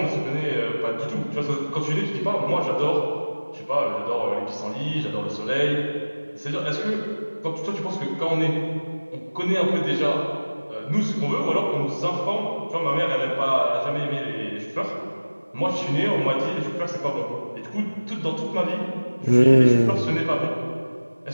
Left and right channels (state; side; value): inverted; both; correlation -1.00